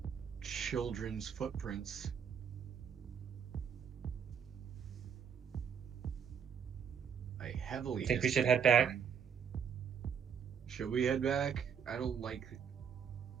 children's footprints. I heavily Think we should dislike head back? them. Should we head back? I don't like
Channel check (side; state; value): left; quieter; 7.4 dB